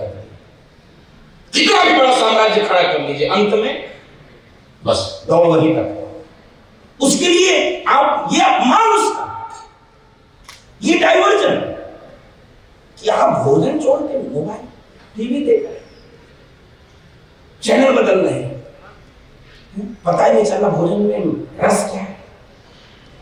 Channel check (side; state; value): both; identical; correlation 1.00